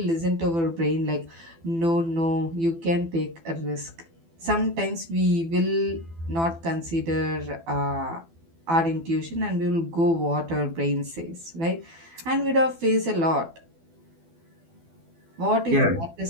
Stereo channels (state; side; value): late; left; 12 ms